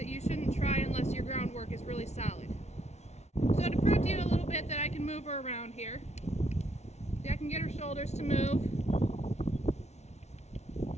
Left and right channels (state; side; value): late; right; 0.32 ms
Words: you shouldn't try unless your groundwork is really solid. So to prove to you a little bit that I can move her around here, see, I can get her shoulders to move.